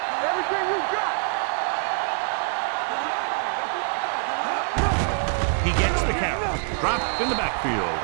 Everything you got. One more, fellas. Let's do our thing. He gets the carry. Dropped in the backfield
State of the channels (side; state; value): left; silent; 62 dB below the other